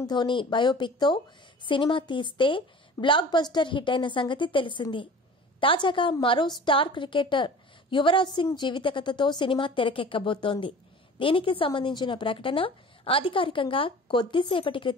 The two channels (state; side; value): normal; both; correlation 0.42